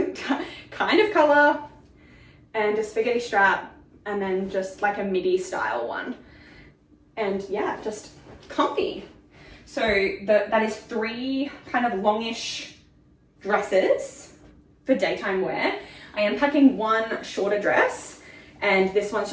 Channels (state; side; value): identical; both; correlation 1.00